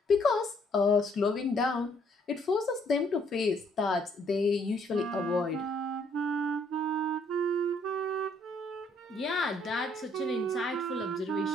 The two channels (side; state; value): both; normal; correlation 0.66